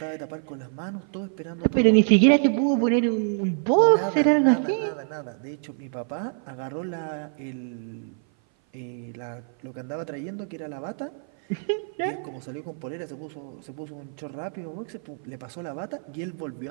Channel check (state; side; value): silent; left; 56 dB below the other